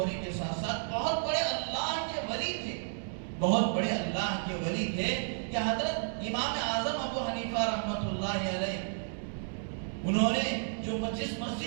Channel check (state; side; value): silent; left; digital silence